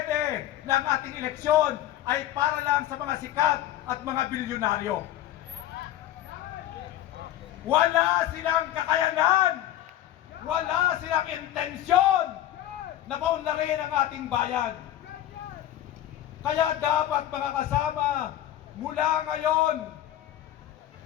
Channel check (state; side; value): quieter; right; 12.9 dB